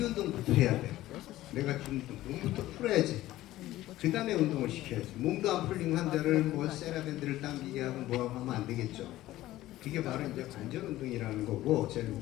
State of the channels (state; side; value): quieter; right; 15.6 dB